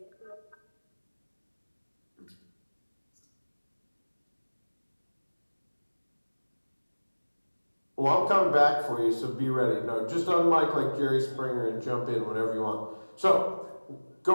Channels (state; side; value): inverted; both; correlation -1.00